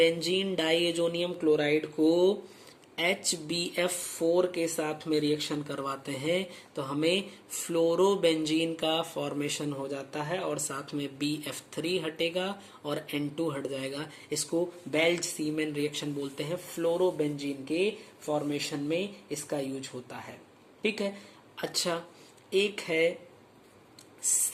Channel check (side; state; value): both; identical; correlation 1.00